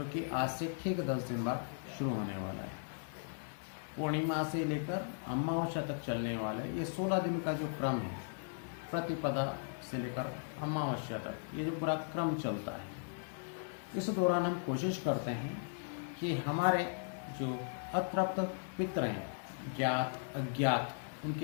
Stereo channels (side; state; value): right; silent; digital silence